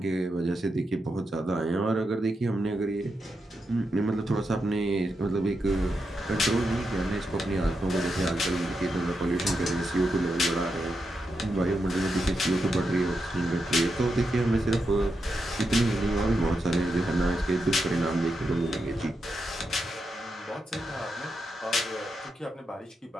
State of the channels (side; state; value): both; normal; correlation 0.85